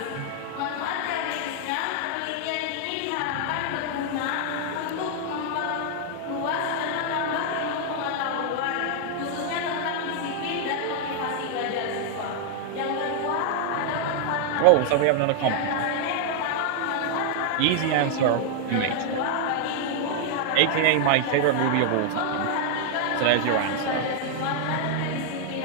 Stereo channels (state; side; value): different; both; correlation 0.00